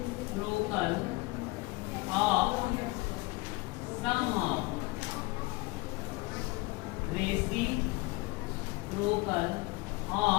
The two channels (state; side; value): quieter; right; 23.4 dB